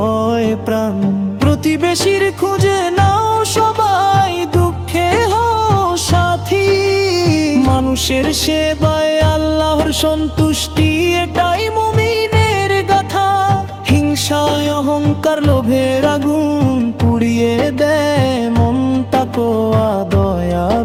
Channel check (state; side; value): identical; both; correlation 1.00